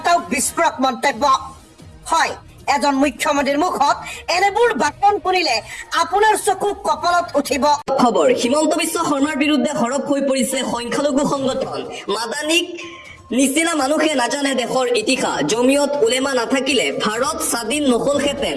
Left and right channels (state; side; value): identical; both; correlation 1.00